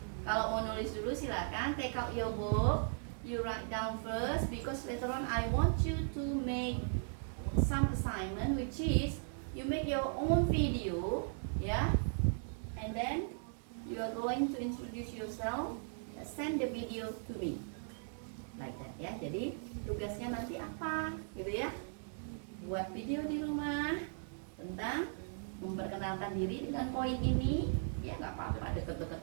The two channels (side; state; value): left; silent; digital silence